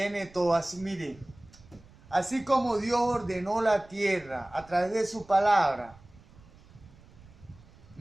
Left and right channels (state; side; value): noise; right; rumble, 24 dB below the sound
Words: todo. Así, mire, así como Dios ordenó la tierra a través de su palabra,